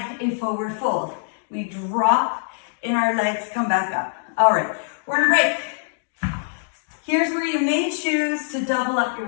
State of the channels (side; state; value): right; silent; digital silence